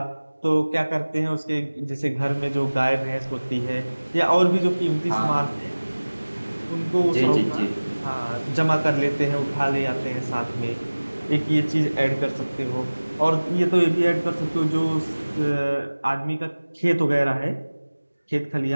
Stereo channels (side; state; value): both; inverted; correlation -1.00